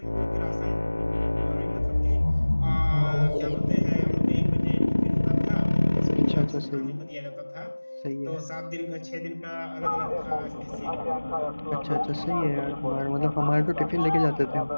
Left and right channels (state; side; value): inverted; both; correlation -1.00